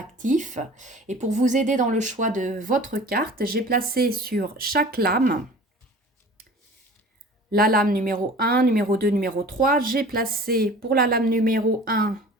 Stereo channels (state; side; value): normal; both; correlation 0.43